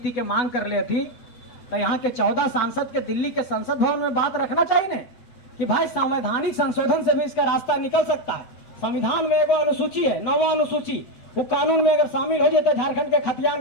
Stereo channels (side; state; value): right; late; 8.3 ms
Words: के मांग कर ले थी, तो यहाँ के 14 सांसद के दिल्ली के संसद भवन में बात रखना चाहिए ना कि भाई संवैधानिक संशोधन से भी इसका रास्ता निकल सकता है। संविधान में एक अनुसूची है, 9वां अनुसूची, वो कानून में अगर शामिल हो जाते झारखंड के